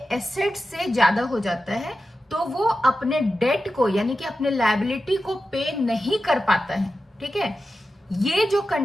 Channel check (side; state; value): both; normal; correlation 0.92